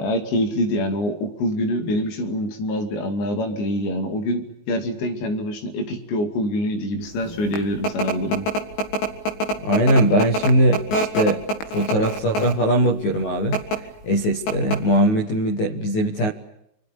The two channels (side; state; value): right; late; 19 ms